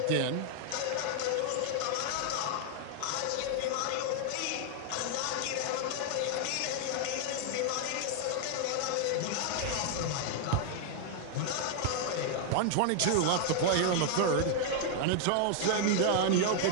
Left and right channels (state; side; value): different; both; correlation 0.00